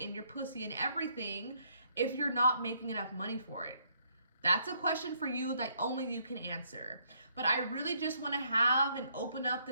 your pussy and everything if you're not making enough money for it? That's a question for you that only you can answer. But I really just want to have and open up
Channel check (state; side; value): inverted; both; correlation -0.70